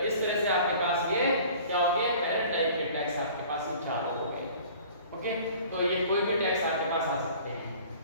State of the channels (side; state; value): both; inverted; correlation -0.47